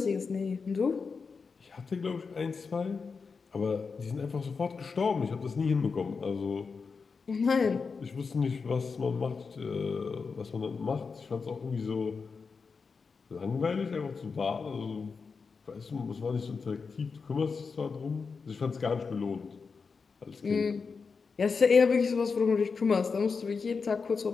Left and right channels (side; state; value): right; quieter; 5.1 dB